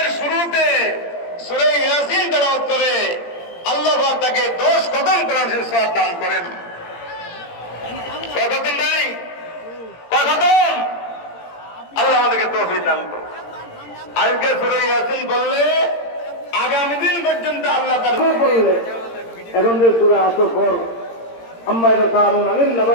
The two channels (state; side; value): late; right; 17 ms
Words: শুরুতে সূরা ইয়াসিন তেলাওয়াত করে, আল্লাহ পাক তাকে 10 খতম কোরআন শরীফ সওয়াব দান করেন। কতদিন নাই, কতদিন আল্লাহ আমাদেরকে তৌফিক দান করুন। আজকে সূরা ইয়াসিন বললে আগামী দিন পর্যন্ত আল্লাহ তাআলা বললে। এখন যে সূরা আসর পর আম্মা ইয়াতাসাআলুনা আনিন